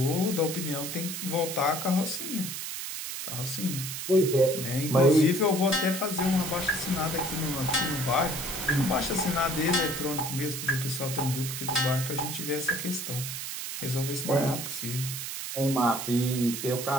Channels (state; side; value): noise; right; hiss, 6 dB below the sound